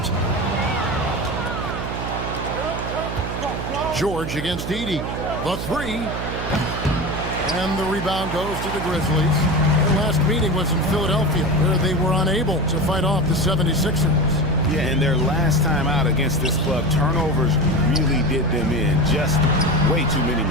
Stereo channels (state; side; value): noise; right; hum, 5 dB below the sound